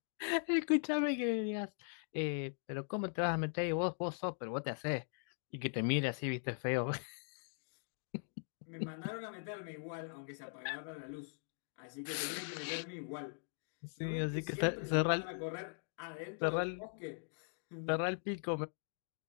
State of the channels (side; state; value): right; silent; digital silence